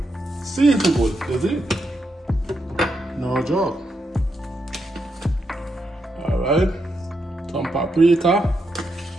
seasoned good. That's it. No joke. Alright. Some paprika.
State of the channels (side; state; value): both; normal; correlation 0.82